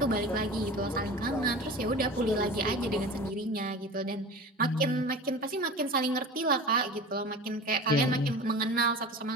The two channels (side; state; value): both; normal; correlation 0.34